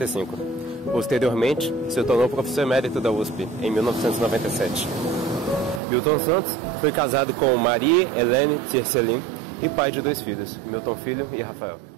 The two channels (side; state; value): left; drops out; at 5.8 s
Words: Posteriormente, se tornou professor emérito da USP, em 1997. Milton Santos foi casado com Marie Helene Tiercelin e pai de 2 filhos, Milton Filho e Rafael.